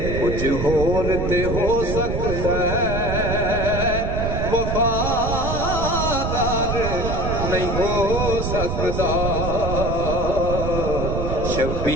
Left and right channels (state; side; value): noise; right; rumble, 2 dB below the sound